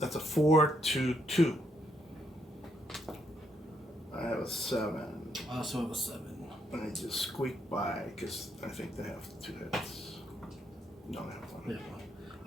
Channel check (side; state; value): both; normal; correlation 0.76